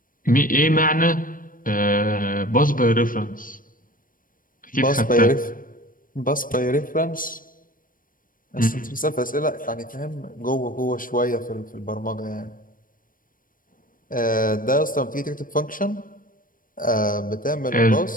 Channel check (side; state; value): right; late; 0.40 ms